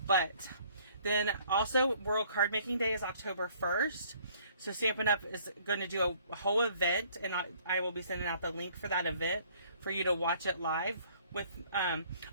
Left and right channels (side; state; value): both; inverted; correlation -0.59